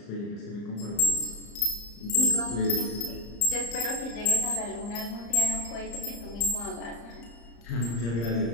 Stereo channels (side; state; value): right; late; 34 ms